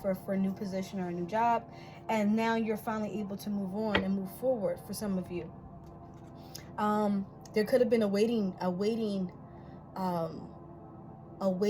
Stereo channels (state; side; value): identical; both; correlation 1.00